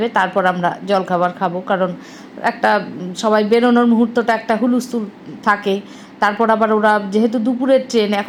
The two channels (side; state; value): both; identical; correlation 1.00